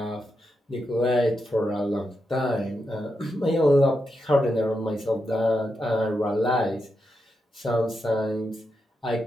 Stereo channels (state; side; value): normal; both; correlation 0.86